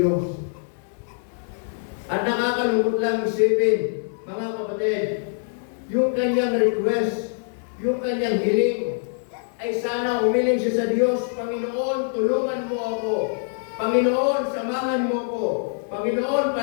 At nakakalungkot lang isipin, mga kapatid, yung kanyang request, yung kanyang hiling, ay sana humiling siya sa Diyos, Panginoon, tulungan mo ako. Panginoon, samahan mo ako. Panginoon,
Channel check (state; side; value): silent; right; digital silence